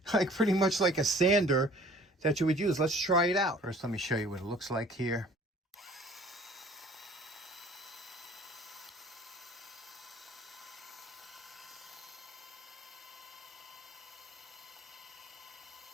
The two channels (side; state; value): both; normal; correlation 0.51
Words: pretty much like a sander that you would use. Let's try it out. First, let me show you what it looks like here.